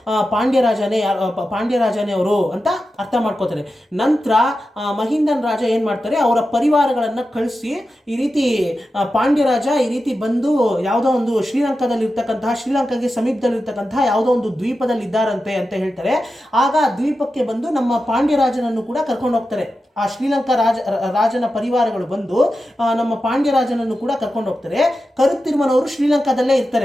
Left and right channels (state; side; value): normal; both; correlation 0.91